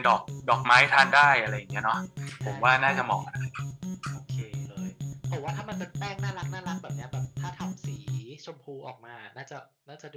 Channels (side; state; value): both; identical; correlation 1.00